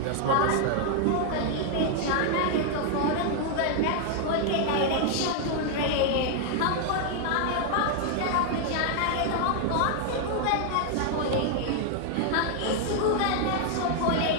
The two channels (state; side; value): different; both; correlation 0.00